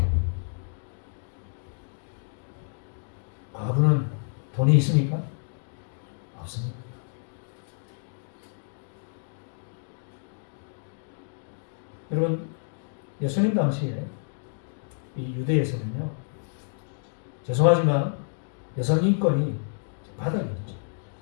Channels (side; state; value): right; silent; digital silence